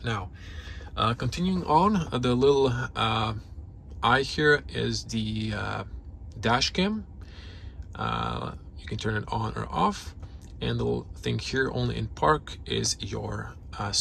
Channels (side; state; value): both; identical; correlation 1.00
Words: Now, continuing on, the little eye here is the dash cam. You can turn it on or off, and the little thing here, only in park, is your